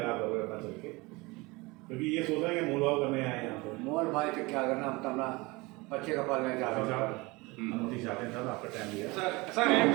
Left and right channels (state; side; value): quieter; left; 23.8 dB